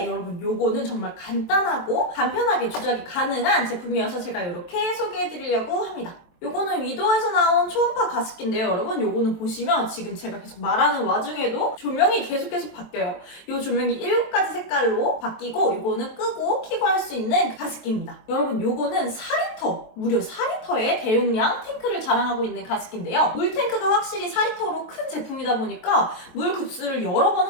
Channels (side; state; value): right; late; 23 ms